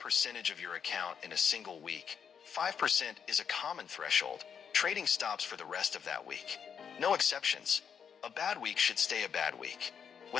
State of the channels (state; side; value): quieter; right; 7.3 dB